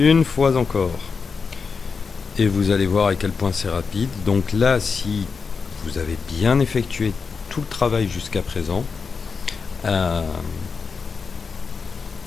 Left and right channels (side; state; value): right; quieter; 5.2 dB